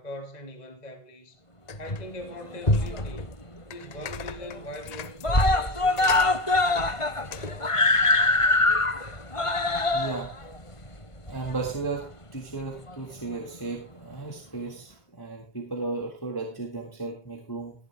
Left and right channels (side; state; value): right; late; 1.5 ms